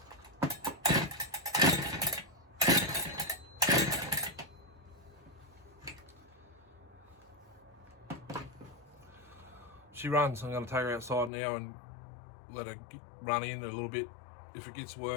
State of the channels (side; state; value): right; drops out; at 11.3 s